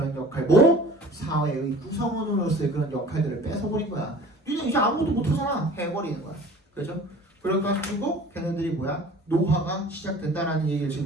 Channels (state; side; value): normal; both; correlation 0.45